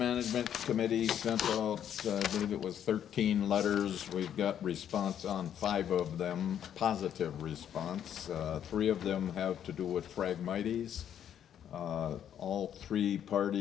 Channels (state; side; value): quieter; right; 9.6 dB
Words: Committee sent out, I believe it was 13 letters. We've got response on 5 of them, positive response. 3 of them have to do with Phragmites. All 3